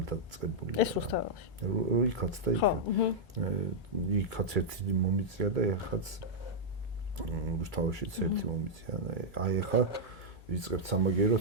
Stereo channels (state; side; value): normal; both; correlation -0.06